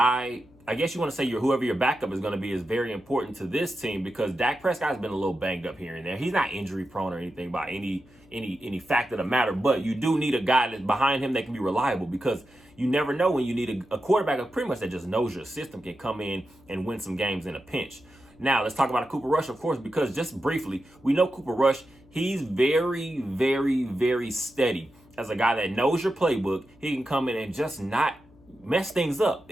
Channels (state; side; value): noise; left; hum, 27 dB below the sound